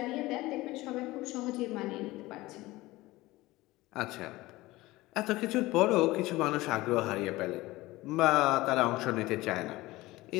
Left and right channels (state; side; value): quieter; right; 19.2 dB